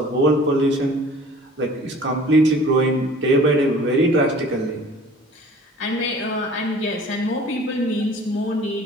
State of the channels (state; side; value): normal; both; correlation 0.48